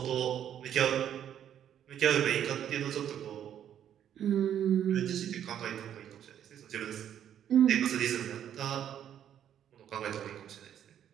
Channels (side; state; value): left; quieter; 9.9 dB